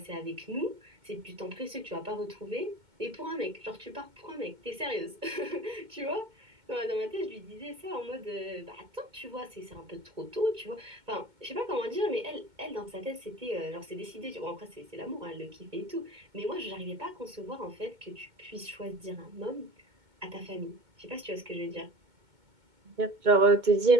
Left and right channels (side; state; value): left; late; 2.2 ms